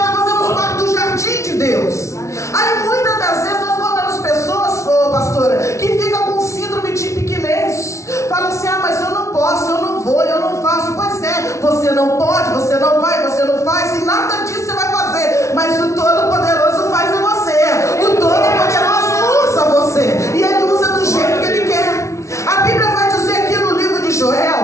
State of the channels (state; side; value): late; right; 0.14 ms